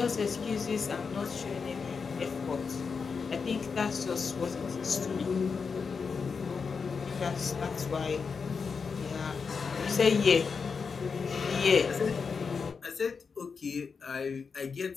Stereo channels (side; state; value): right; quieter; 5.4 dB